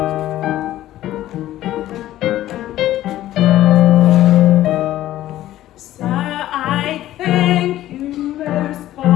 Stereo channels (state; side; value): quieter; right; 14.0 dB